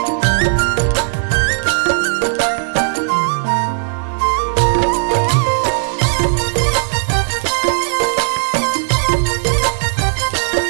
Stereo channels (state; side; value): silent; left; digital silence